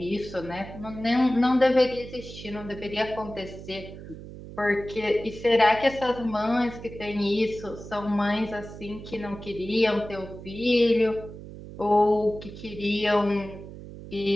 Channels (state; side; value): noise; right; hum, 13 dB below the sound